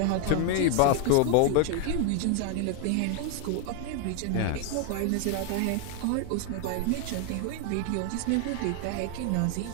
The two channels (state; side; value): different; both; correlation 0.01